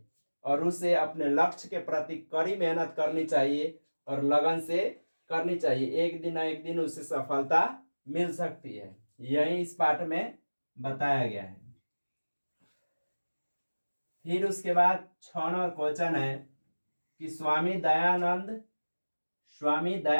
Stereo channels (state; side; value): inverted; both; correlation -1.00